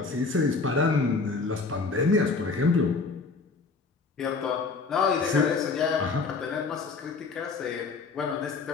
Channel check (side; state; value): right; quieter; 4.3 dB